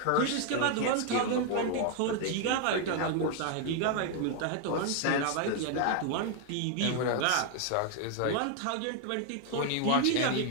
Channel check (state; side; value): different; both; correlation 0.00